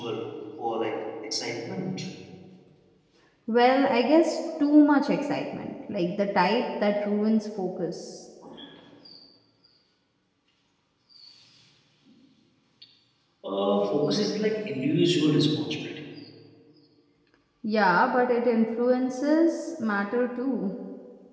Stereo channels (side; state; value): both; identical; correlation 1.00